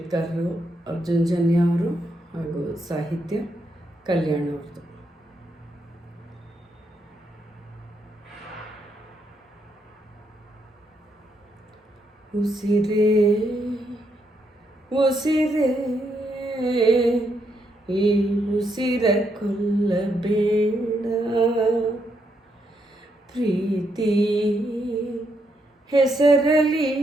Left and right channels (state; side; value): normal; both; correlation 0.78